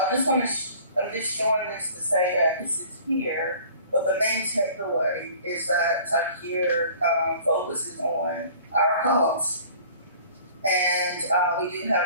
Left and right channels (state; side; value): inverted; both; correlation -0.48